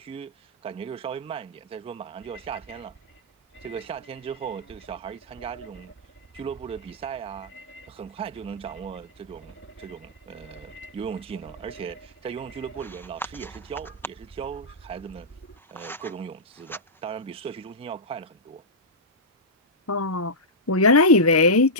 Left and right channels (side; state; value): both; normal; correlation -0.10